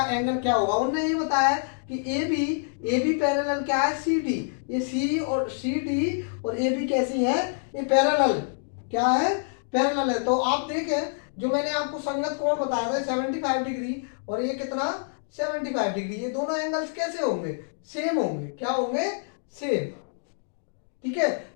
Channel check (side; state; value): right; silent; digital silence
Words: एंगल क्या होगा। उन्होंने ये बताया है कि ए बी पैरेलल क्या है? C D. ये सी और सी डी और ए बी कैसी है? ये पैरेलल। क्या है? पैरेलल है। तो आप देखें, जो मैंने आपको संगत कोण बताया था 75 डिग्री, और ये कितना? 75 डिग्री। ये दोनों एंगल्स कैसे होंगे? सेम होंगे। क्या होंगे? सेम। ठीक है,